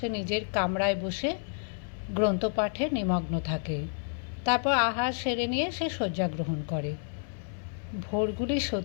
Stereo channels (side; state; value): right; silent; 58 dB below the other